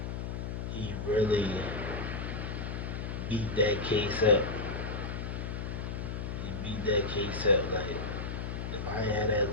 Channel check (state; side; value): noise; left; hum, 4 dB below the sound